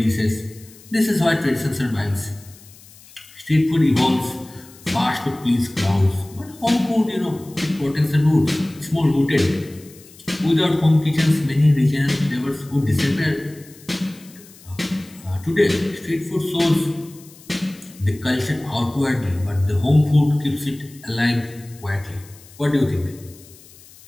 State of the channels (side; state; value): left; noise; hiss, 23 dB below the sound